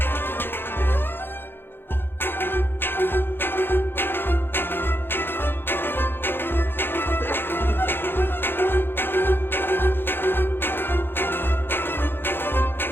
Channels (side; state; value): right; late; 0.10 ms